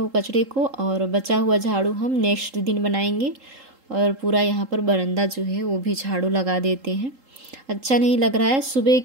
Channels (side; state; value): left; late; 3.8 ms